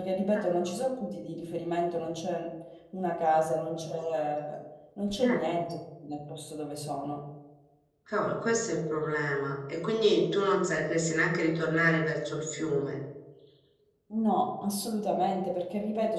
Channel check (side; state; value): both; identical; correlation 1.00